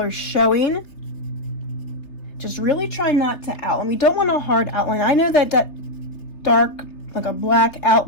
showing. Just really try not to outline. We don't want a hard outline. I know that dark, like a black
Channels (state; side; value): late; right; 3.5 ms